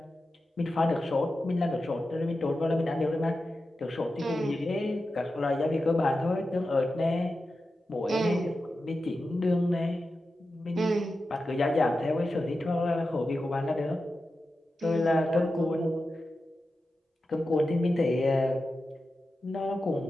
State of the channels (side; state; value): both; normal; correlation 0.91